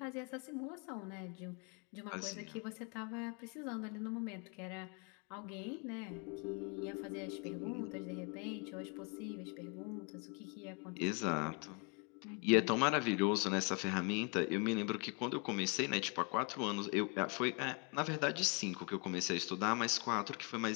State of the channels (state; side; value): quieter; right; 34.8 dB